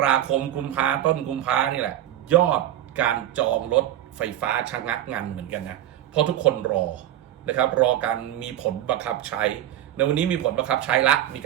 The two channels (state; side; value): quieter; left; 12.5 dB